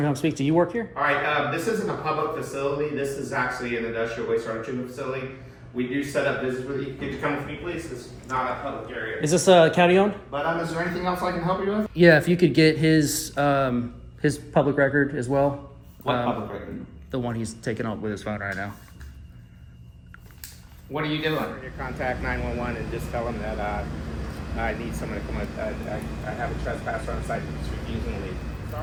to come speak to you. Work here? All right, this isn't a public facility. This is actually an industrial wastewater treatment facility. We do set up business with you. Could you come with me, please? It's not a public area. Is this county owned? But is there anything else I can help you with? Yeah, if you could get his public record as well. What public record? The one he's taking up with his phone right now. What are you doing? You contact 911 and just tell them that I need someone to come. I have a trespasser on site that's refusing to leave.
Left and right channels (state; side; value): identical; both; correlation 1.00